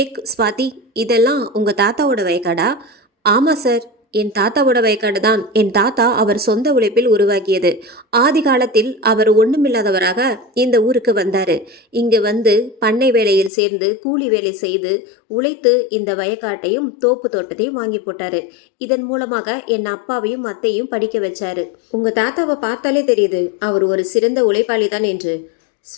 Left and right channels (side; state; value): right; drops out; at 13.5 s